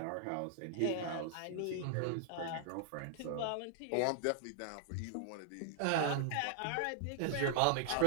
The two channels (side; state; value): both; different; correlation -0.01